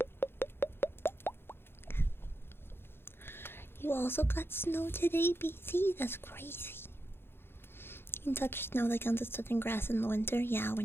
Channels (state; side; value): late; right; 0.11 ms